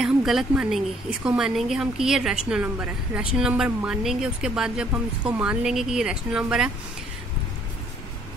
हम गलत मानेंगे, इसको मानेंगे हम कि ये रैशनल नंबर है। रैशनल नंबर मानेंगे, उसके बाद जब हम इसको मान लेंगे कि ये रैशनल नंबर है,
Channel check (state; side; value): normal; both; correlation 0.63